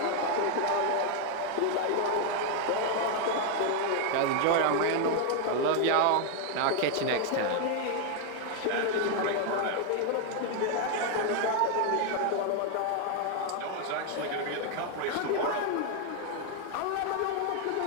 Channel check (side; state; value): both; different; correlation 0.00